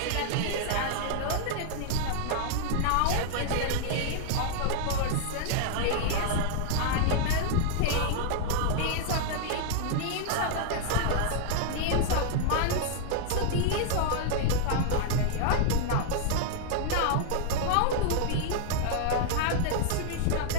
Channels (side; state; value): both; different; correlation -0.01